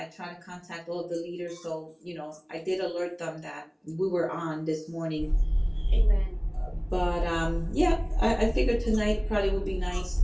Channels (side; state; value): both; identical; correlation 1.00